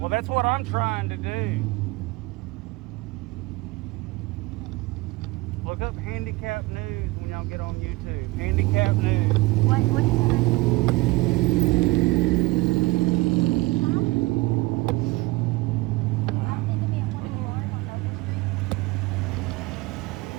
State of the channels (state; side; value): quieter; left; 21.9 dB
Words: that's what I'm trying to do. Look up handicap news when y'all get on YouTube. Handicap news. What is